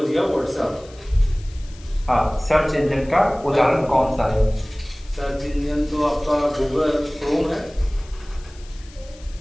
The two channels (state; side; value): noise; left; hiss, 24 dB below the sound